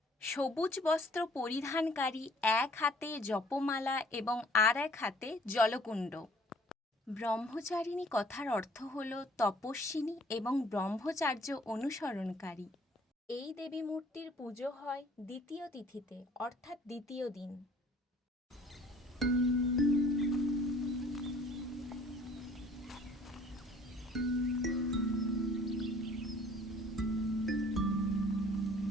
সবুজ বস্ত্র পরিধানকারী, এক হাতে জপমালা এবং আর এক হাতে জলকুণ্ড। ব্রহ্মচারিণী কথার অর্থ হল তপস্বিনী এবং ব্রহ্মচার্য অনুসরণকারী। এই দেবী মূর্তির পুজো হয় দ্বিতীয় তিথিতে, অর্থাৎ দ্বিতীয় দিন।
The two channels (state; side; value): normal; both; correlation 0.55